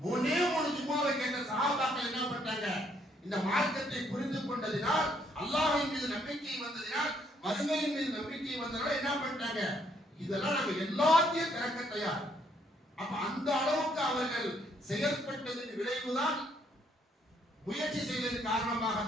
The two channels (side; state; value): both; normal; correlation 0.69